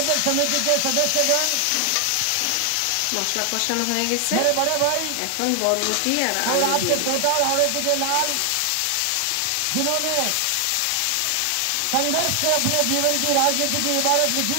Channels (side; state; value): both; different; correlation 0.00